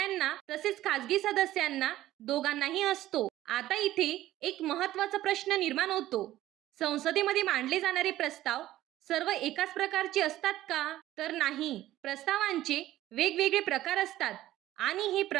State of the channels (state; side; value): quieter; left; 14.6 dB